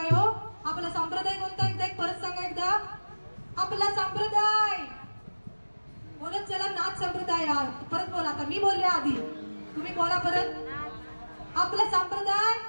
हो. आपला संप्रदाय कोणता? एकदा एक परत सांगा. एकदा आपला संप्रदाय बोलत चला. नाथ संप्रदाय. परत बोला. आता मी बोलले आधी, तुम्ही बोला परत. आपला संप्रदाय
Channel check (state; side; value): inverted; both; correlation -1.00